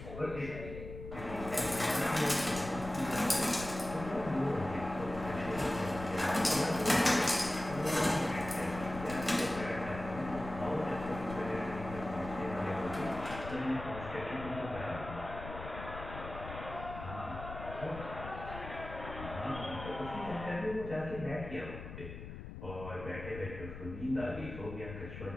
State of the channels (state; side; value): noise; left; rumble, 10 dB below the sound